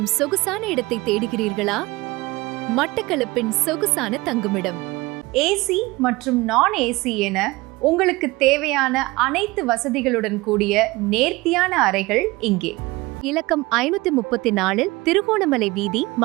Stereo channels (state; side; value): quieter; left; 21.7 dB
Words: சொகுசான இடத்தை தேடுகிறீர்களா? மட்டக்களப்பின் சொகுசான தங்குமிடம் ஏசி மற்றும் நான் ஏசி என உங்களுக்கு தேவையான அனைத்து வசதிகளுடன் கூடிய நேர்த்தியான அறைகள் இங்கே. இலக்கம் 534 திருகோணமலை வீதி,